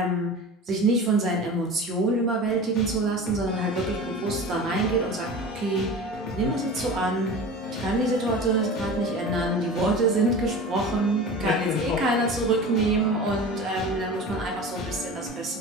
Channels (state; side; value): normal; both; correlation 0.35